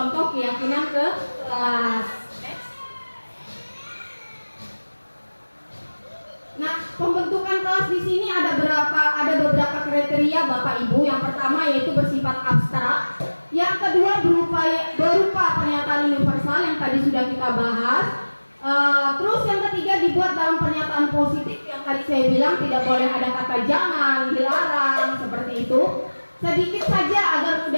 keyakinan ke kelas. Nah, pembentukan kelas di sini ada beberapa kriteria Bapak Ibu. Yang pertama yaitu bersifat abstrak. Yang kedua berupa pernyataan universal yang tadi sudah kita bahas. Terus yang ketiga dibuat dalam pernyataan positif yang tadi saya bilang tidak boleh ada kata jangan, dilarang, seperti itu. Sedikit saja agar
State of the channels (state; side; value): inverted; both; correlation -1.00